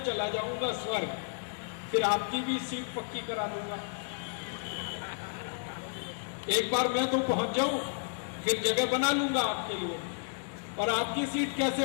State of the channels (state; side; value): silent; right; digital silence